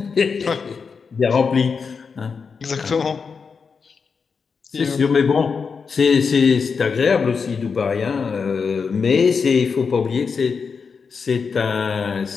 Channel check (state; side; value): quieter; right; 5.5 dB